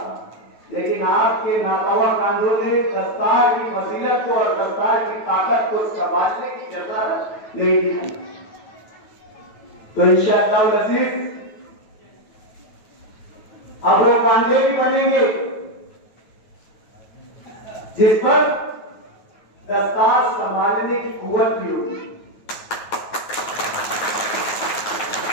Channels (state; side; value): late; right; 9.3 ms